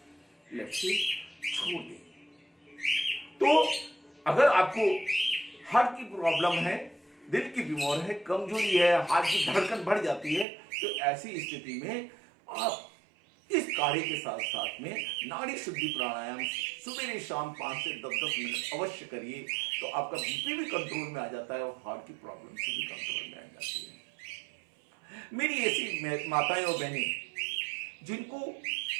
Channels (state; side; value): drops out; left; at 10.5 s